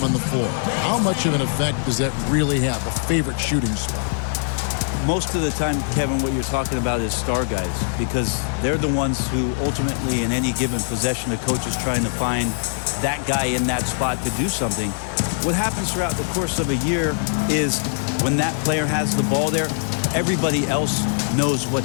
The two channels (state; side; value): silent; right; digital silence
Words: on the floor. How much of an effect does that really have, a favorite shooting spot? Most of the time, Kevin, what you're talking about is star guys, because they're the ones who ultimately in any given possession, the coach is trying to find that guy in that spot to do something. What happens throughout the course of a year is when that player has the ball there, everybody else knows